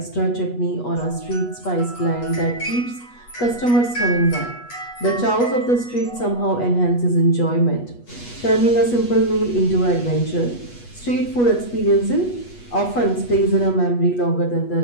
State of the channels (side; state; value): right; late; 8.3 ms